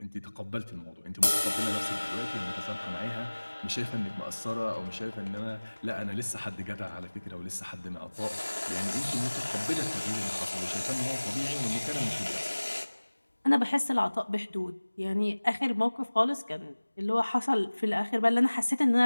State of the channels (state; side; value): inverted; both; correlation -1.00